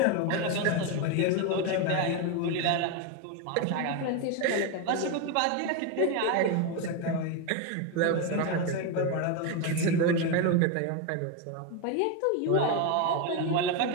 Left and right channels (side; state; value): both; different; correlation 0.02